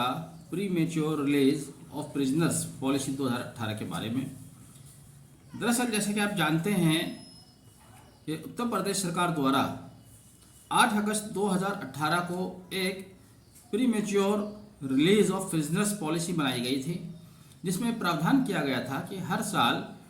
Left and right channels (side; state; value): both; identical; correlation 1.00